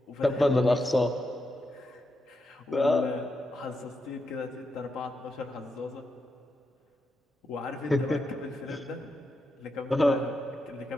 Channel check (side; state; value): both; normal; correlation 0.85